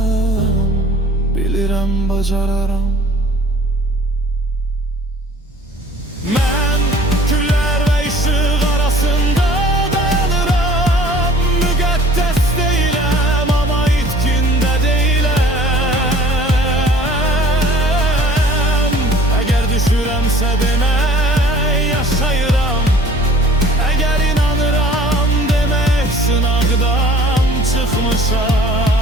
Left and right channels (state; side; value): normal; both; correlation 0.50